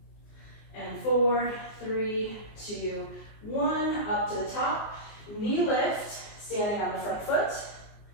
And 4, 3, 2, 1. Up to the top. Knee lift, standing on the front foot.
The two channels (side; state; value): right; late; 19 ms